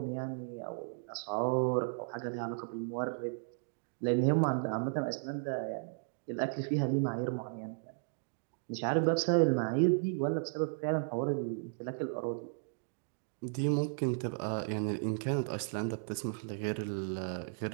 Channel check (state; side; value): silent; left; digital silence